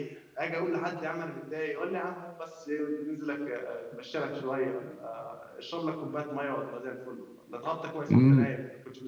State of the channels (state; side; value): identical; both; correlation 1.00